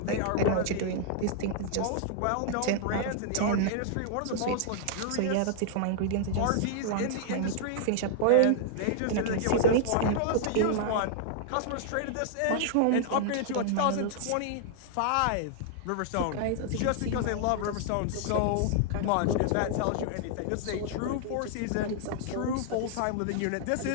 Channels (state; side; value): different; both; correlation -0.01